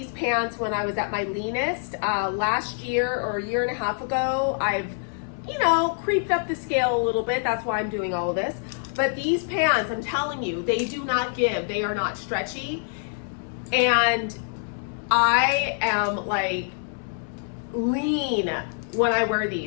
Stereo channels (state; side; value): silent; right; digital silence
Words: pants when I was at my leanest. Last year or a year and a half ago, I've creeped up the scale a little bit. That's why I'm doing all of this. But these pants, I'm telling you, they do not give. They are not stretchy. And I am like lean when I wear